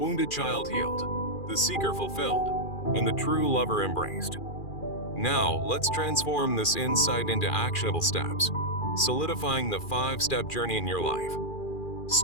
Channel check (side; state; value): right; late; 2.4 ms